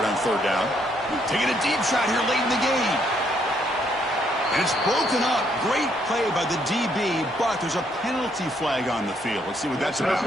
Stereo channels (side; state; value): both; normal; correlation 0.71